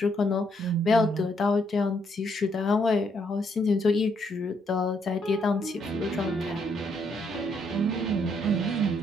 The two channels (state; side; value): normal; both; correlation 0.73